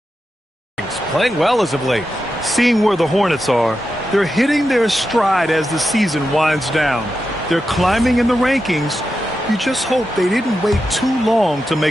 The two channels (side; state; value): both; normal; correlation 0.89